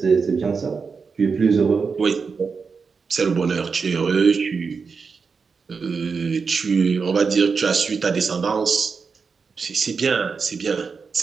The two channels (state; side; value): quieter; left; 5.2 dB